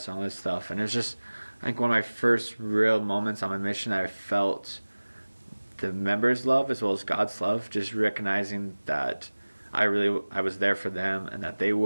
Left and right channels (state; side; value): inverted; both; correlation -1.00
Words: and all this stuff. And it was just, I think, one of my first real moments on my mission that I felt the members' love as well as God's love, just recognizing that I was there for them and that they